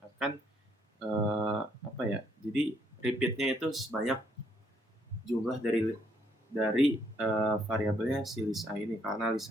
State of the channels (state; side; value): normal; both; correlation 0.70